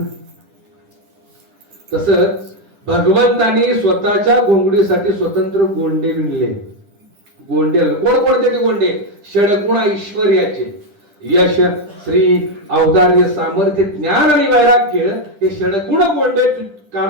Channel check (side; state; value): left; late; 10 ms